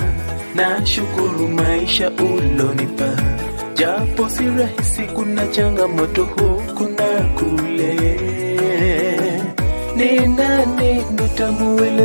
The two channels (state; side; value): inverted; both; correlation -1.00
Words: na shukuru maisha ulonipa, japo si rahisi, kuna changamoto huku na kule. Ni nani